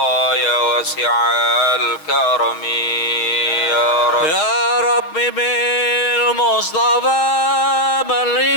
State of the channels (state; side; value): late; right; 6.4 ms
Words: ya wasi'al karami ya Rabbi. Ya Rabbi bil Mustafa balligh